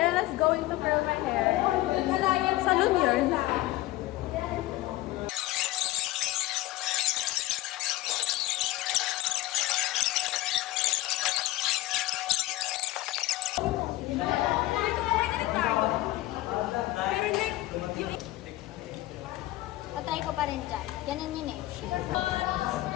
going to curl my hair. Salon yun. Patry ko pa rin dyan. Ganun yun eh.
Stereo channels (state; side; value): quieter; right; 17.2 dB